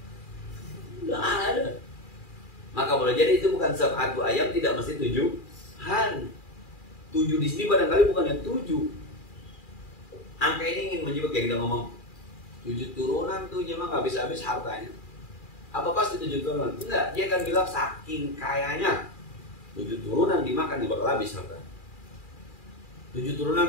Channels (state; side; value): late; right; 2.4 ms